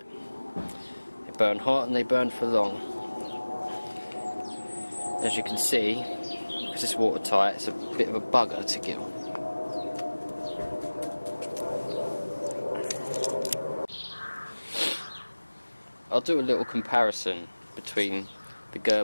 they burn hot, and they burn for long. As you can see, because it's watertight, it's a bit of a bugger to kill. I'll do a little comparison between the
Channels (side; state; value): both; inverted; correlation -1.00